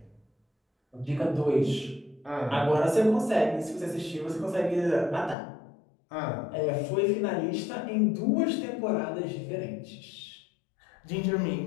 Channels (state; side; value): drops out; right; at 5.4 s